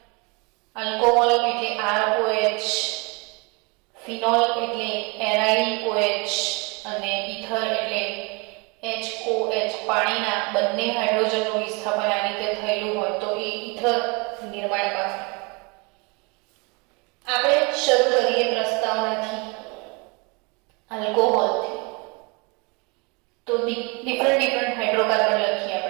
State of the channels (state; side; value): quieter; left; 29.7 dB